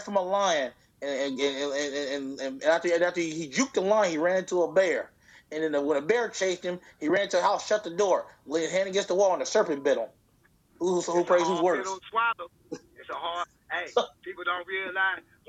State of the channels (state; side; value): identical; both; correlation 1.00